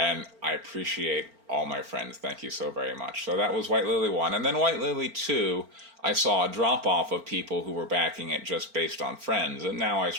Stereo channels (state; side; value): late; left; 4.4 ms